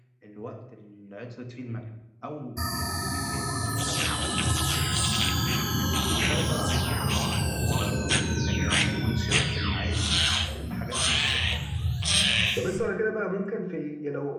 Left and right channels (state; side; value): identical; both; correlation 1.00